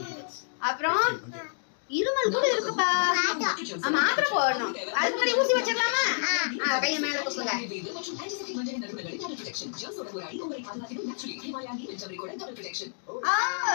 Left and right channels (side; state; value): right; silent; digital silence